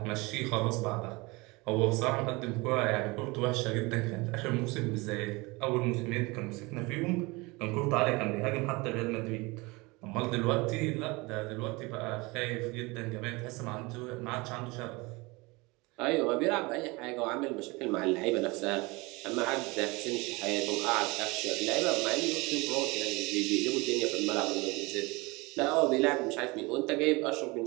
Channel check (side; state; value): left; quieter; 24.7 dB